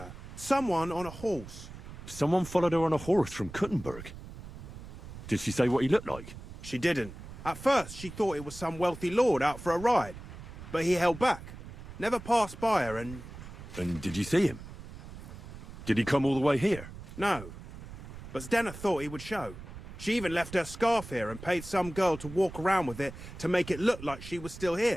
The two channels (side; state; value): right; noise; rumble, 13 dB below the sound